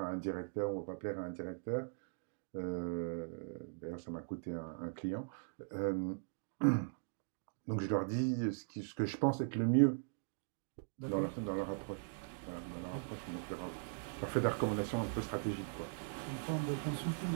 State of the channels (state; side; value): silent; left; digital silence